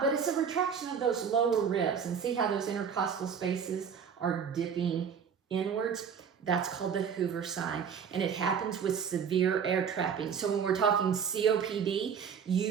but it's a retraction of those lower ribs. And see how those intercostal spaces are dipping inwards? That's called the Hoover sign, and it happens with severe air trapping. So when we're talking COPD,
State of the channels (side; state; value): left; quieter; 7.1 dB